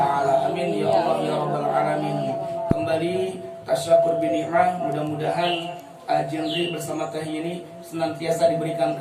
Amin ya Allah ya rabbal alamin. Kembali tasyakur bi ni'mah, mudah-mudahan Jendri bersama Teh Yeni senantiasa diberikan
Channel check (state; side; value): identical; both; correlation 1.00